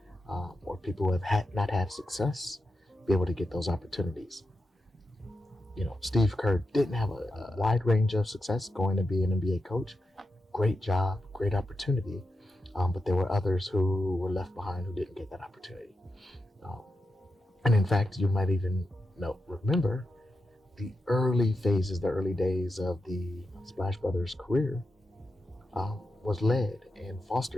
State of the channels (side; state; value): both; normal; correlation 0.88